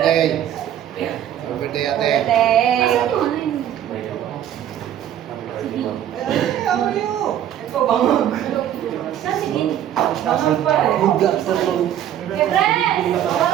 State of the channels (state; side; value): quieter; left; 10.8 dB